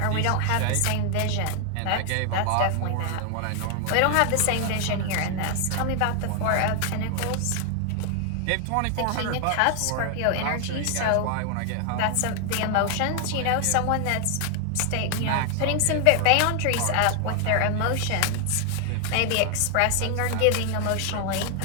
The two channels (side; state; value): both; different; correlation 0.00